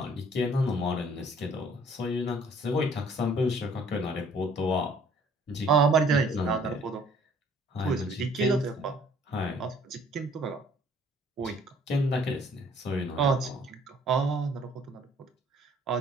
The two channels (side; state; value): both; normal; correlation 0.58